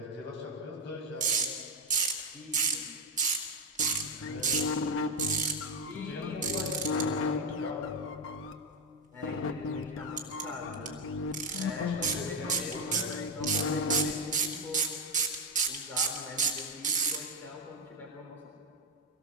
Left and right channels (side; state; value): both; normal; correlation 0.05